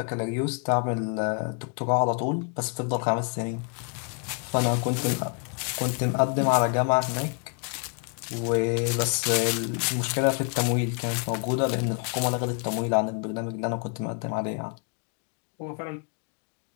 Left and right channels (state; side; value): quieter; right; 39.9 dB